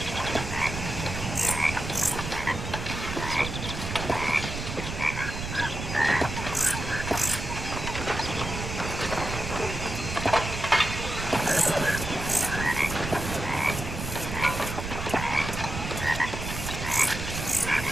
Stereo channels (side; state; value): right; noise; rumble, 6 dB below the sound